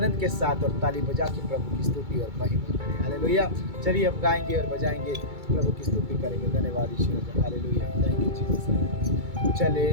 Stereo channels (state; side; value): late; left; 2.3 ms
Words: के साथ और ताली बजा के प्रभु की स्तुति और महिमा करें। हालेलुया। चलिए हम गाएंगे और बजाएंगे, प्रभु की स्तुति करेंगे। धन्यवाद ईश्वर। हालेलुया। Thank you Jesus. चले